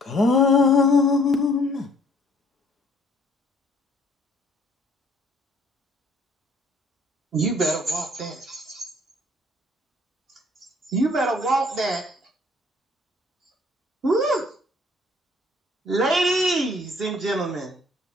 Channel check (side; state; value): both; normal; correlation 0.60